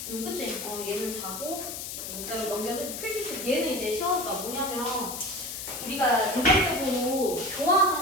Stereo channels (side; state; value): left; noise; hiss, 7 dB below the sound